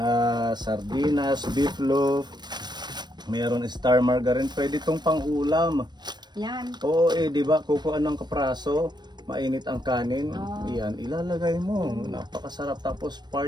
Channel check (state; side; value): late; left; 0.21 ms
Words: Sardinas, beef loaf. Meron star margarine. Pwede itong pang-ulam. Yan. Oo, di ba? Kukuha ng kapraso. Mainit ang kanin. Yan, ilalagay mo. Napakasarap. Tapos